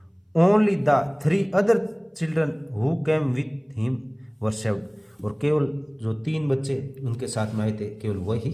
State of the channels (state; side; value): identical; both; correlation 1.00